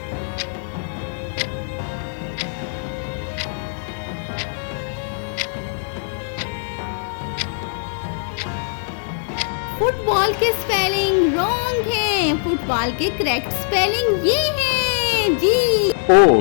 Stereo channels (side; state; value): right; silent; digital silence